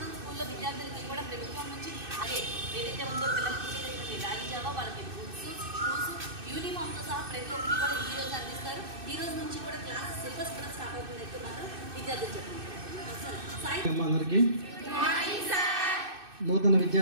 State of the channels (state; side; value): late; left; 2.6 ms